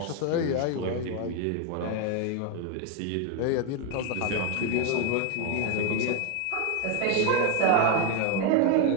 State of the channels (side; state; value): both; different; correlation 0.01